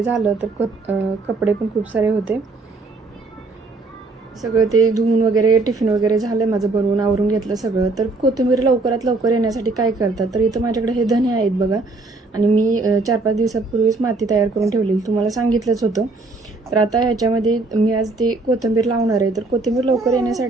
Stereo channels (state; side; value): quieter; left; 3.5 dB